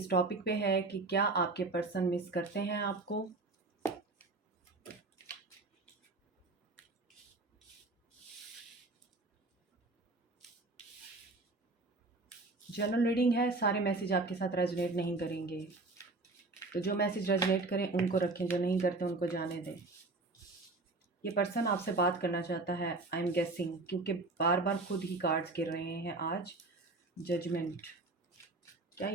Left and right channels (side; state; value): left; quieter; 3.3 dB